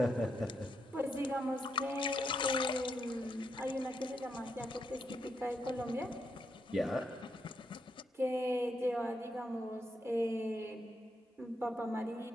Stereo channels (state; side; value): normal; both; correlation 0.80